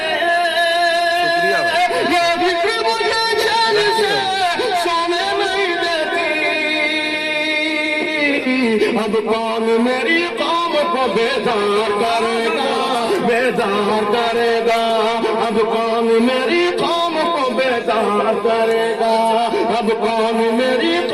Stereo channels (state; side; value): identical; both; correlation 1.00